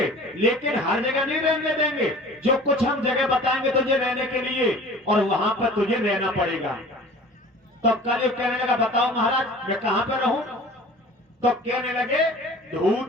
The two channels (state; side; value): normal; both; correlation 0.43